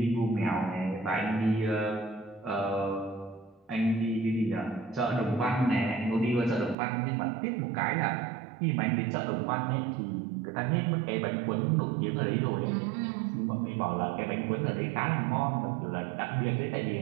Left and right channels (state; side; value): drops out; left; at 6.8 s